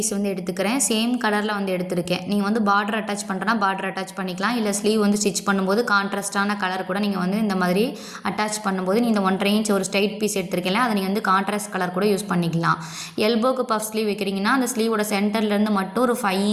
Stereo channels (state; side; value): identical; both; correlation 1.00